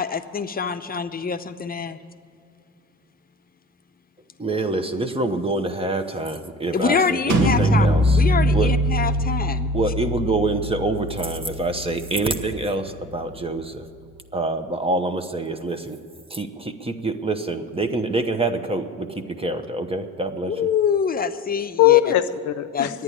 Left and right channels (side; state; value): both; normal; correlation 0.36